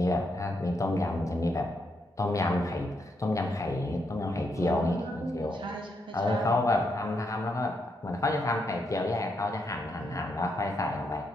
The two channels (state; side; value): normal; both; correlation 0.79